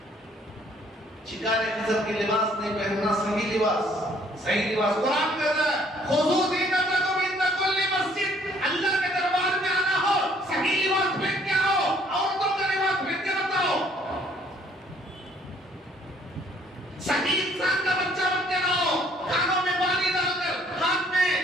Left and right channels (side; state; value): both; normal; correlation 0.62